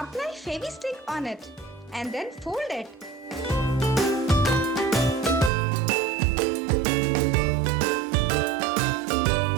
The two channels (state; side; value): drops out; left; at 5.5 s